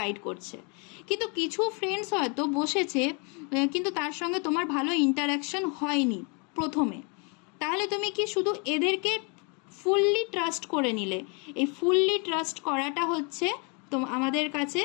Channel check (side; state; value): right; quieter; 33.9 dB